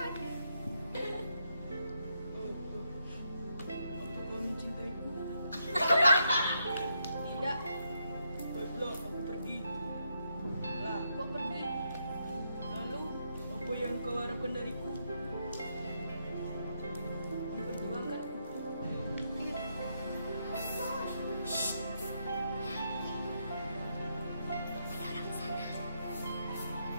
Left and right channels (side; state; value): both; inverted; correlation -0.79